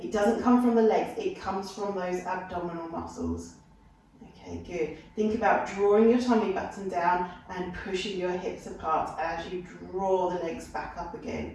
It doesn't come from the legs, it comes from those abdominal muscles. Okay, good. Think about drawing your tummy button down and pushing your hips apart as you draw the legs back up again.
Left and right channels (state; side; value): identical; both; correlation 1.00